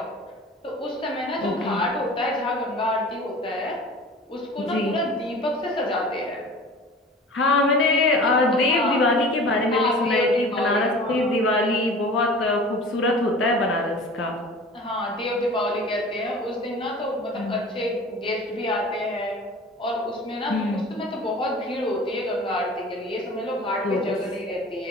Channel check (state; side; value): normal; both; correlation 0.40